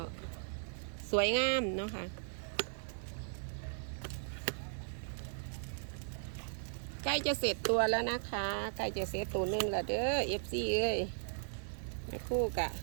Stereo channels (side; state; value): left; silent; digital silence